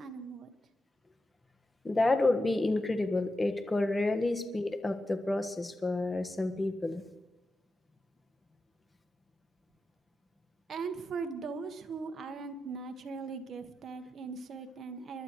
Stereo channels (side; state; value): both; normal; correlation 0.90